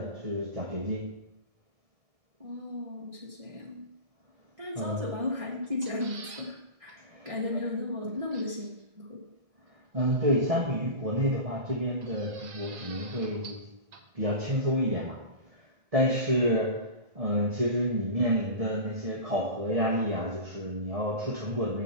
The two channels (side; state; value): left; late; 1.6 ms